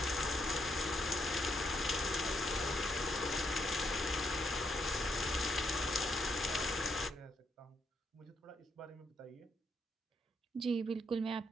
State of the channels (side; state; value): both; normal; correlation 0.75